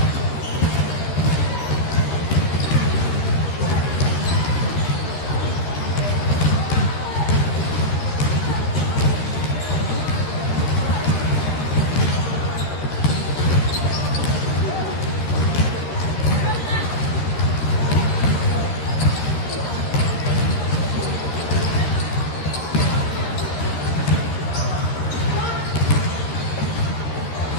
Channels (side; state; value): right; late; 13 ms